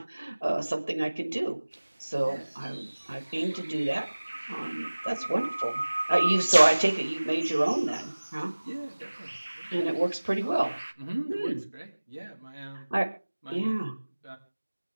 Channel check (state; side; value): inverted; both; correlation -1.00